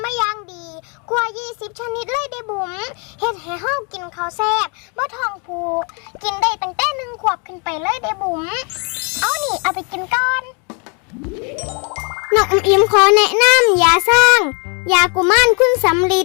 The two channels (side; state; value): right; quieter; 35.5 dB